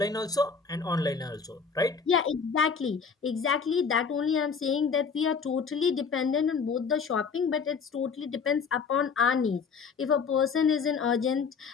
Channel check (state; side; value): quieter; right; 5.7 dB